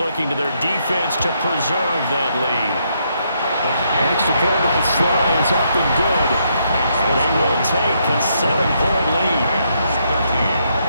to their defense to preserve that lead. Extra point by Sly is up and good. They will take a 7-point lead.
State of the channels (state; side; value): inverted; both; correlation -0.75